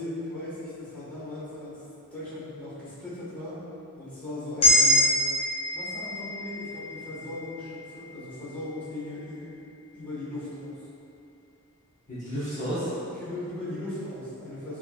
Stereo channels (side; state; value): both; normal; correlation 0.08